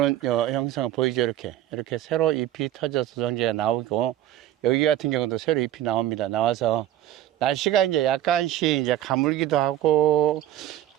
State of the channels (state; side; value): quieter; left; 13.0 dB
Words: 형상을 보이죠. 이렇게 새로 잎이 터져서 도장지가 나오고, 여기 같은 경우도 새로 잎이 나옵니다. 나와서 날씨가 이제 약간씩 이제 가물기도 하고,